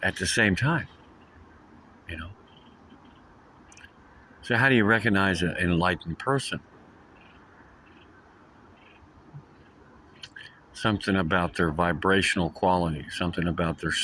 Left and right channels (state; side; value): identical; both; correlation 1.00